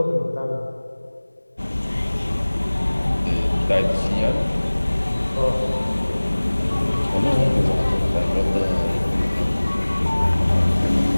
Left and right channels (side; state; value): both; inverted; correlation -1.00